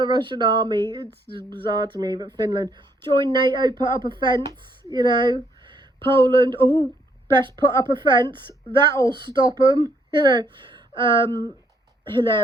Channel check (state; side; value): normal; both; correlation 0.70